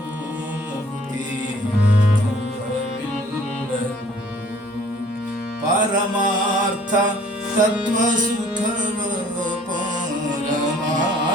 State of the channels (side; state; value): both; normal; correlation 0.55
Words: ಪರಮಾರ್ಥ ತತ್ವ ಸುಖವ